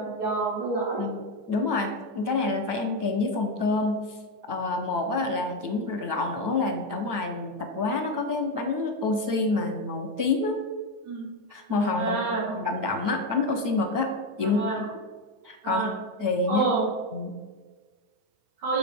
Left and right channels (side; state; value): left; late; 9.0 ms